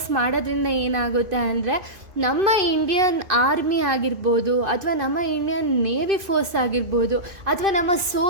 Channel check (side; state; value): left; late; 2.5 ms